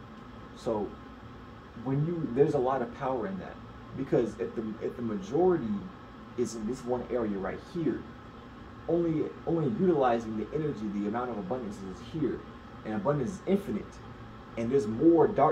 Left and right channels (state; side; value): identical; both; correlation 1.00